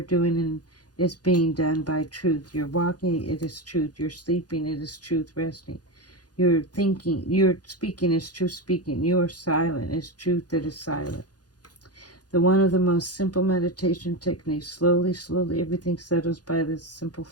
doing is being done by truth. You're walking, it is truth. You're sleeping, it is truth resting. You're thinking, you're speaking is truth speaking. You are silent, is truth that is silent. The one of the most simple meditation techniques. Slowly, slowly, everything settles by this simple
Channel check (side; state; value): right; late; 0.69 ms